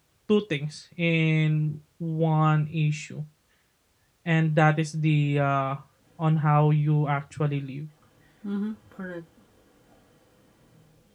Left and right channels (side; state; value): both; identical; correlation 1.00